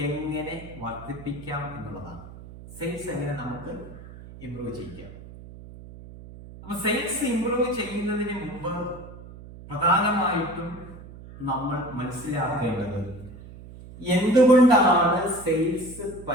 എങ്ങനെ വർദ്ധിപ്പിക്കാം എന്നുള്ളതാണ്. സെയിൽസ് എങ്ങനെ നമുക്ക് ഇംപ്രൂവ് ചെയ്യാം. അപ്പൊ സെയിൽസ് ഇംപ്രൂവ് ചെയ്യുന്നതിന് മുമ്പ് പ്രധാനമായിട്ടും നമ്മൾ മനസ്സിലാക്കേണ്ടത് എന്തുകൊണ്ടാണ് സെയിൽസ്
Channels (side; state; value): right; noise; hum, 16 dB below the sound